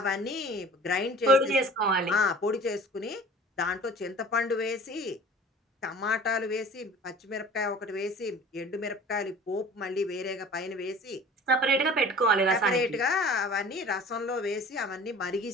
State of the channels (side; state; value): both; normal; correlation 0.45